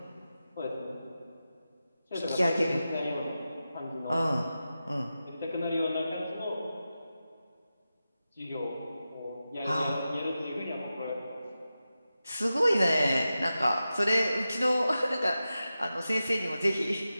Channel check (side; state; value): both; inverted; correlation -0.93